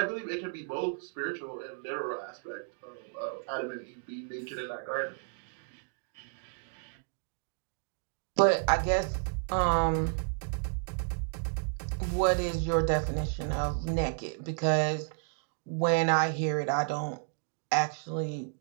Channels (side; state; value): left; silent; 56 dB below the other